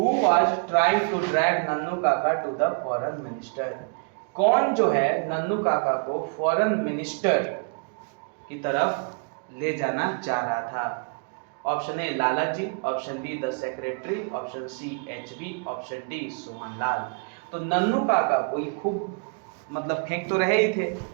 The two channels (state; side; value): quieter; left; 38.9 dB